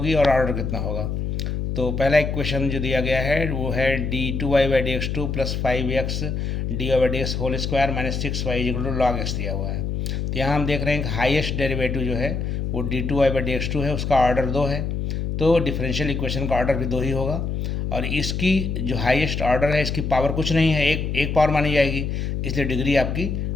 और ऑर्डर कितना होगा। तो पहला एक क्वेश्चन जो दिया गया है वो है d2y/dx2 plus 5x dy/dx whole square minus 6y equal to log x दिया हुआ है। तो यहाँ हम देख रहे हैं कि हाईएस्ट डेरिवेटिव जो है वो d2y/dx2 है, उसका ऑर्डर 2 है। तो डिफरेंशियल इक्वेशन का ऑर्डर भी 2 ही होगा। और इसकी जो हाईएस्ट ऑर्डर है इसकी पावर कुछ नहीं है, एक पावर मानी जाएगी, इसलिए डिग्री आपकी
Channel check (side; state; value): left; noise; hum, 2 dB below the sound